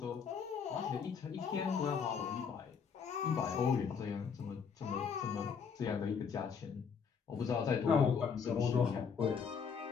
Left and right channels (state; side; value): quieter; right; 6.4 dB